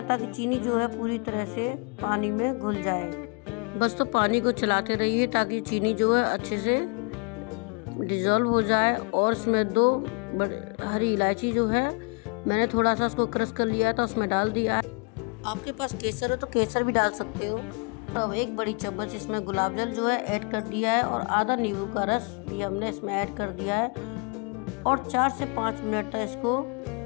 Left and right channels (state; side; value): quieter; right; 34.6 dB